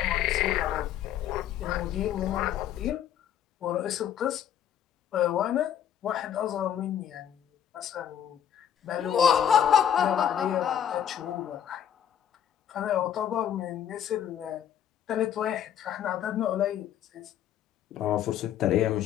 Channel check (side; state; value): right; quieter; 9.9 dB